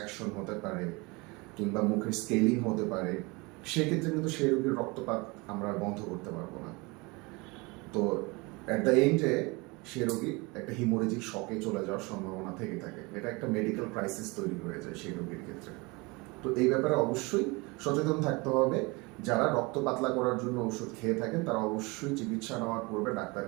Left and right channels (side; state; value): left; quieter; 26.2 dB